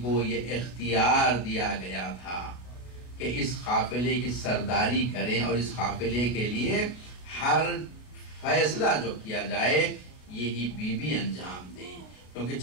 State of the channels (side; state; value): right; late; 33 ms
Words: کو یہ اختیار دیا گیا تھا کہ اس قافلے کی سرداری کریں اور اس قافلے کے لیے ہر فیصلہ جو کیا جائے یہی بیوی انجام دیں، کیونکہ